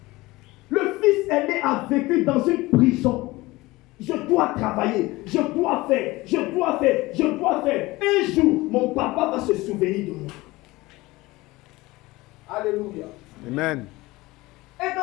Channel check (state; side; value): quieter; right; 20.4 dB